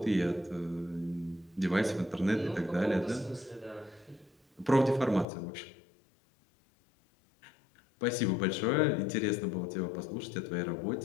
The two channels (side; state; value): right; drops out; at 5.2 s